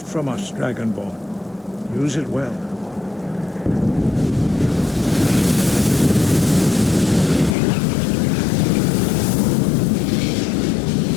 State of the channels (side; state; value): right; drops out; at 7.6 s